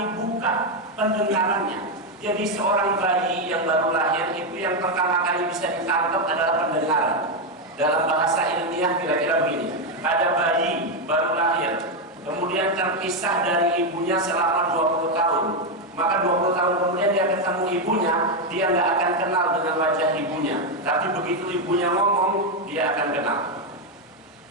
buka pendengarannya. Jadi seorang bayi yang baru lahir itu yang pertama kali bisa ditangkap adalah pendengaran. Dalam bahasa ilmiah kira-kira begini, ada bayi baru lahir, kemudian terpisah dari ibunya selama 20 tahun. Maka 20 tahun kemudian dia ketemu ibunya, dia nggak akan kenal dengan wajah ibunya. Tapi begitu ibunya ngomong, dia akan kenal.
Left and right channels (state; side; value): normal; both; correlation 0.05